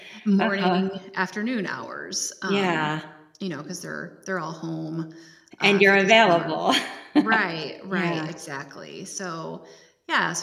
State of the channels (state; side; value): identical; both; correlation 1.00